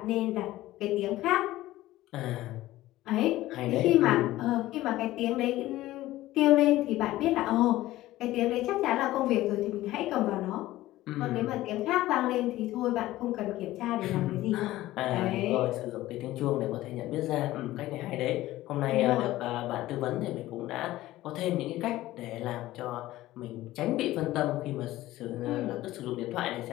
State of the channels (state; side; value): quieter; right; 16.2 dB